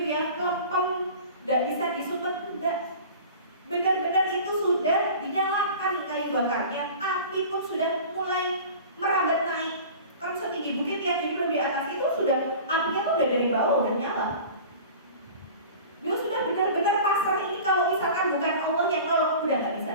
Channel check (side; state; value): both; inverted; correlation -0.39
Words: ya, lempem, nggak bisa disumet, enggak. Benar-benar itu sudah dinyalakan kayu bakarnya, api pun sudah Allah udah nyala. Dia sudah benar-benar pasrah ini, kalau misalkan bukan Allah yang nolong udah nggak